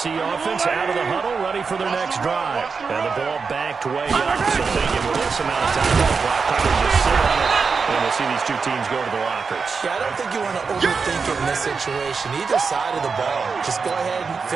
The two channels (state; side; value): quieter; left; 5.1 dB